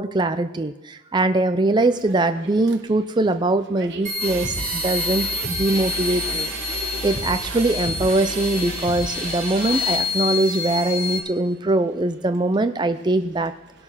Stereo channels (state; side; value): normal; both; correlation 0.58